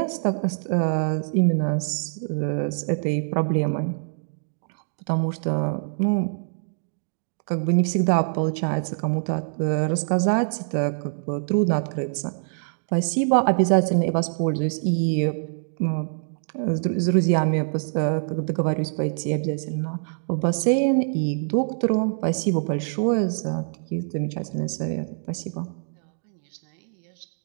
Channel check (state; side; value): silent; left; digital silence